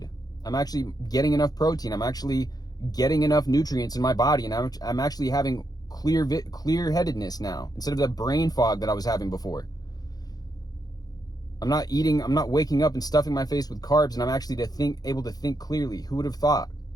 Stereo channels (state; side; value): late; right; 0.19 ms